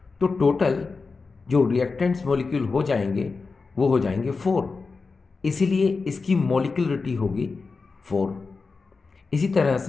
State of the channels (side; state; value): right; quieter; 4.3 dB